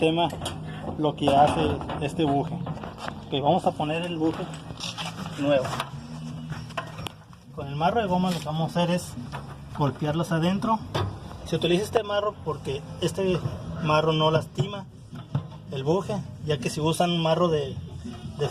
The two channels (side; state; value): both; identical; correlation 1.00